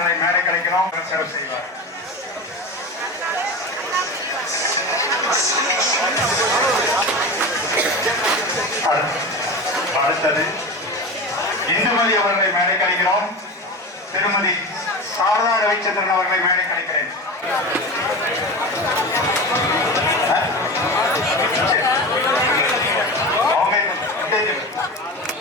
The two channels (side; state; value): both; normal; correlation 0.27